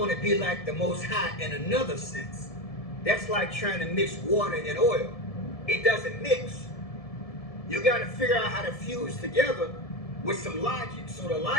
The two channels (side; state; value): right; late; 1.7 ms